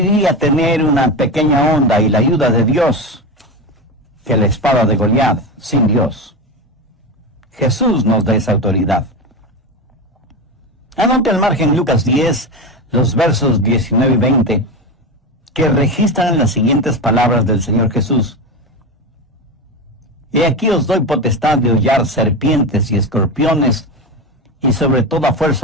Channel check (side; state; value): both; normal; correlation 0.20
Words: tener una pequeña onda y la ayuda de Dios que la espada de Goliat sin Dios. Jesús nos da esa autoridad. Anote al margen Lucas 10, los versos 19 y 20, que registran las siguientes palabras del Señor Jesús. He aquí os doy potestad de hollar serpientes y escorpiones, y sobre toda